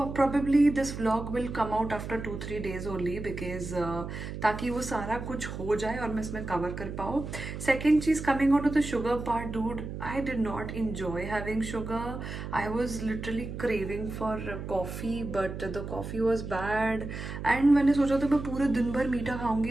probably this vlog will come out after 2-3 days only because ताकि वो सारा कुछ हो जाए और मैं इसमें कवर कर पाऊँ. सेकेंड चीज़, coming on to the sugar part, dude, I did not enjoy having sugar. I was literally craving for coffee, but the coffee was bad. And मैंने सोचा था मैं पूरे दिन भर मीठा खाऊंगी,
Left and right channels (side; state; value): right; noise; hum, 7 dB below the sound